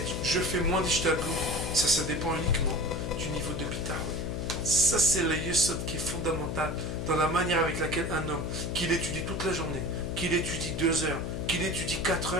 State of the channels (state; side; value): noise; left; hum, 3 dB below the sound